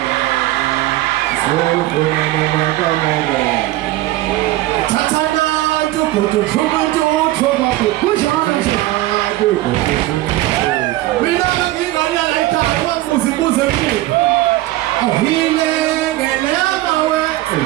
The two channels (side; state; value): left; quieter; 16.7 dB